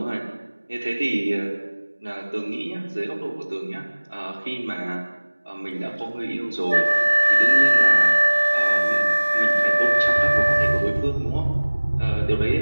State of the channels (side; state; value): both; inverted; correlation -1.00